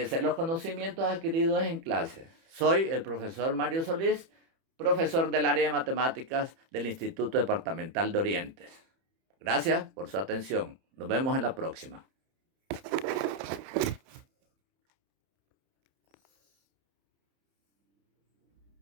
los conocimientos adquiridos en clase. Soy el profesor Mario Solís, profesor del área de matemáticas del Instituto Departamental de Orientes. Gracias por su atención. Nos vemos en la próxima.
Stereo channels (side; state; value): left; late; 30 ms